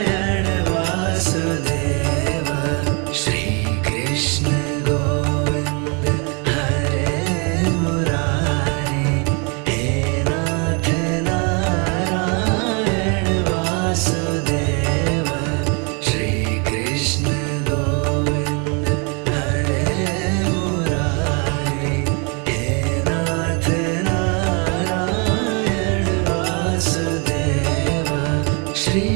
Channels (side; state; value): left; quieter; 33.6 dB